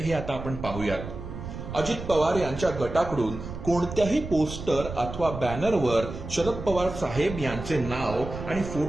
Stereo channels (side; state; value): right; noise; rumble, 9 dB below the sound